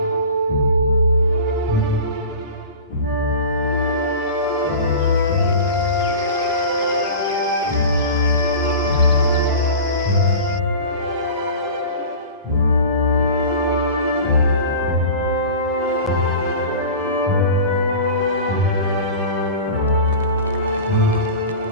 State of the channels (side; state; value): both; inverted; correlation -0.34